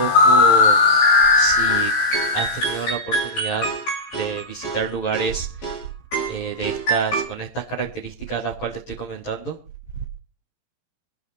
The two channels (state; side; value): late; right; 17 ms